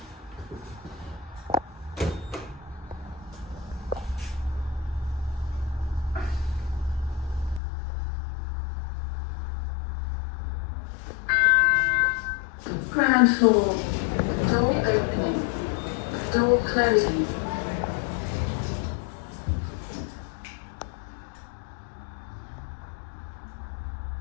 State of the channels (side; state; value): right; drops out; at 7.6 s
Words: Ground floor. Door opening. Door closing.